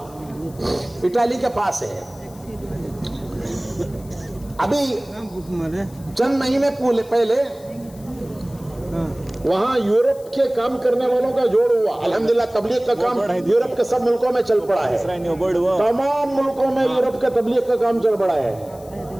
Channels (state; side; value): noise; left; hiss, 24 dB below the sound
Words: इटाली के पास है। अभी चंद महीने पहले वहां यूरोप के काम करने वालों का जोड़ हुआ। अल्हम्दुलिल्लाह तबलीग का काम यूरोप के सब मुल्कों में चल पड़ा है, तमाम मुल्कों में यूरोप के तबलीग का काम चल पड़ा है।